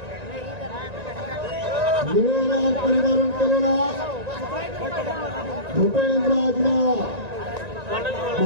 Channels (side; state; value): left; late; 1.9 ms